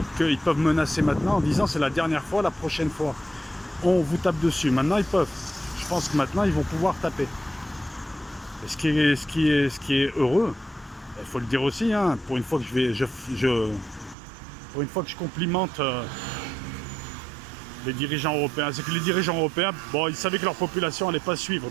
qu'ils peuvent menacer maintenant en disant c'est la dernière fois, la prochaine fois, on vous tape dessus. Maintenant, ils peuvent. Je pense que maintenant, ils vont pouvoir taper. Et ce qui est heureux, il faut le dire aussi, hein, pour une fois que pour une fois que je complimente les dirigeants européens, c'est que les dirigeants européens, bon, ils savaient que leur population n'allait pas suivre,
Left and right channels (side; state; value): left; drops out; at 14.2 s